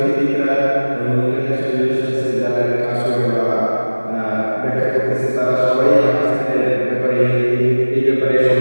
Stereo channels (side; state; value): both; inverted; correlation -1.00